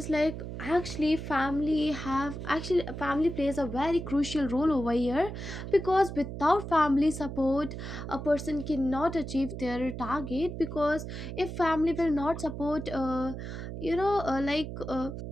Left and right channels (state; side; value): noise; right; hum, 7 dB below the sound